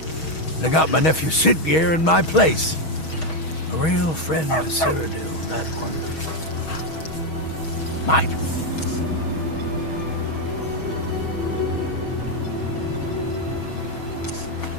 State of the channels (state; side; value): late; right; 6.3 ms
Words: They got my nephew Siddgeir in my place. A real friend to Cyrodiil, that one. Mine.